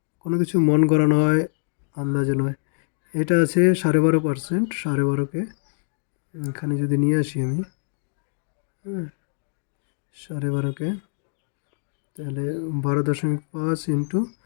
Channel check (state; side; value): silent; right; digital silence